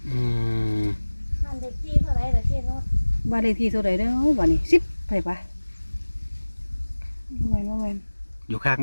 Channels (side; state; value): both; inverted; correlation -1.00